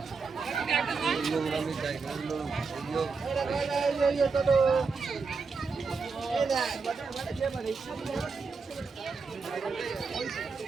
নোংরামি জায়গাগুলো এগুলো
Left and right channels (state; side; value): quieter; left; 4.8 dB